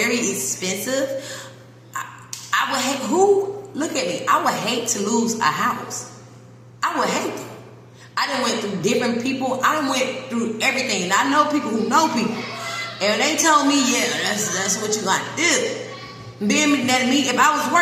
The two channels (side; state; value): both; identical; correlation 1.00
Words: expensive, I would hate, look at me, I would hate to lose a house. I would hate it. I done went through different people. I done went through everything. And I know people who know people. And they told me, yeah, that's what you got to do. Being that me, if I was